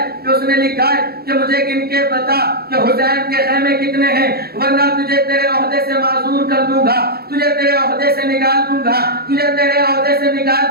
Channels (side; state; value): left; late; 0.45 ms